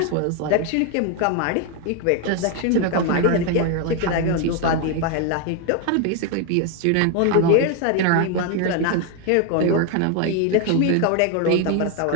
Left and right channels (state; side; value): different; both; correlation 0.01